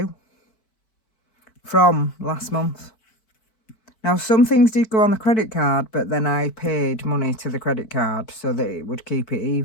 from last month. Now, some things did go on the credit card, but then I paid money to the credit card so that it would keep it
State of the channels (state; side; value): late; right; 4.5 ms